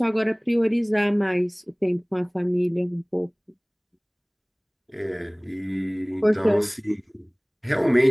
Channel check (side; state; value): both; identical; correlation 1.00